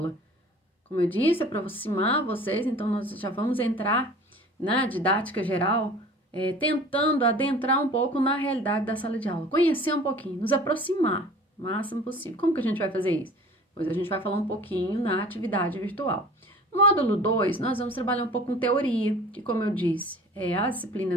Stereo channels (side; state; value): both; normal; correlation 0.44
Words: Como eu disse, é para aproximar vocês, então nós já vamos entrar na didática geral tentando adentrar um pouco na realidade da sala de aula, conhecer um pouquinho, nos aproximar o máximo possível. Como que a gente vai fazer isso? Pois a gente vai falar um pouquinho na atividade virtual. No módulo 2, nós vamos trabalhar um pouco com teoria, que, como eu disse, as